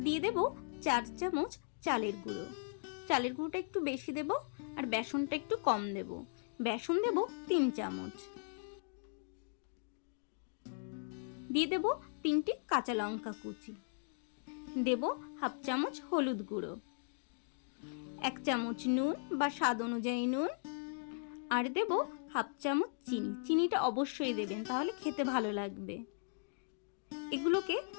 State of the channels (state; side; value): silent; right; digital silence